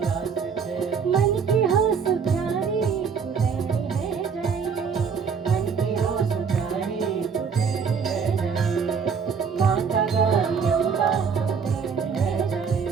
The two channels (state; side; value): quieter; left; 6.2 dB